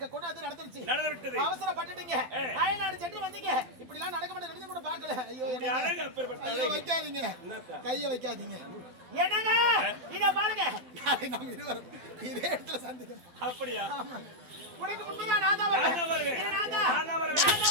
கூட அது நடந்து விட்டது. அவசரப்பட்டுட்டீங்க, அயல்நாடு சென்று வந்தீங்க. இப்படி எல்லாம் நடக்க மாட்டேன் நினைச்சு கூட பார்க்கல. ஐயோ ஐயோ, வைக்காதீங்க, கைய வைக்காதீங்க. என்னங்க இத பாருங்க, நாளை நாம் இருவரும் இதே இடத்துல சந்திக்கணும். அப்படியா? உனக்கு முன்னாடி நான் தான் வருவேன். நான் தான்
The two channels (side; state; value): left; late; 12 ms